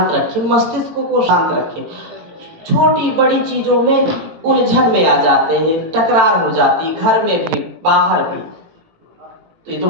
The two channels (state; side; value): late; left; 18 ms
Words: रखें, मस्तिष्क को शांत रखें। छोटी बड़ी चीजों में उलझन में आ जाते हैं, टकरार हो जाती, घर में भी बाहर भी। तो ये तो